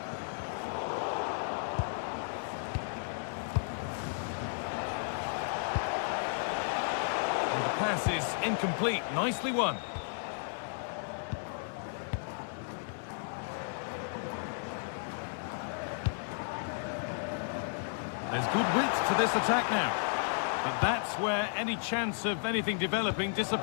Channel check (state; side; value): silent; right; 55 dB below the other